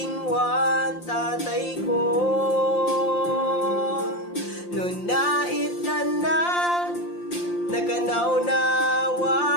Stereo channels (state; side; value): late; right; 5.7 ms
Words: tatay ko Nun naitanak